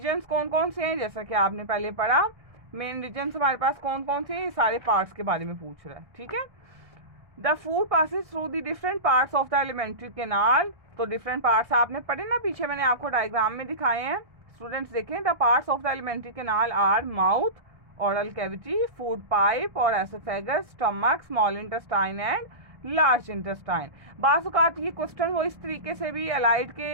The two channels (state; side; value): late; left; 1.6 ms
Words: कौन कौन से हैं, जैसा कि आपने पहले पढ़ा, मेन रीजन्स हमारे पास कौन कौन से हैं, सारे पार्ट्स के बारे में पूछ रहा है। ठीक है, the food passes through the different parts of the alimentary canal. तो डिफरेंट पार्ट्स आपने पढ़े ना, पीछे मैंने आपको डायग्राम में दिखाए हैं। स्टूडेंट्स देखें, the parts of the alimentary canal are mouth, oral cavity, food pipe और oesophagus, stomach, small intestine and large intestine. बाज़ औक़ात ये क्वेश्चन वो इस तरीके से भी अलाइड